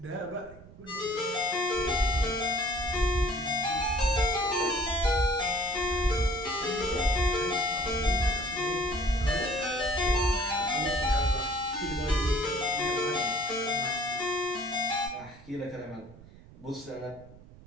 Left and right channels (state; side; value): noise; right; rumble, 20 dB below the sound